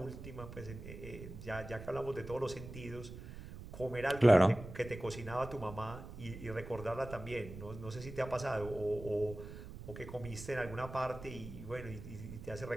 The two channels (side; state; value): right; noise; rumble, 12 dB below the sound